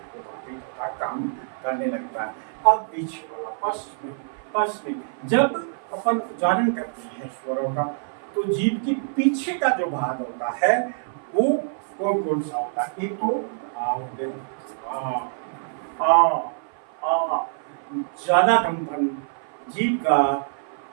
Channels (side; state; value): left; silent; 55 dB below the other